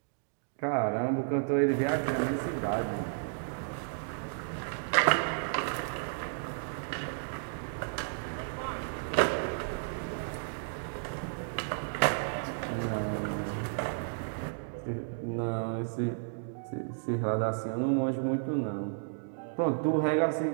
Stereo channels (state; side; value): silent; left; digital silence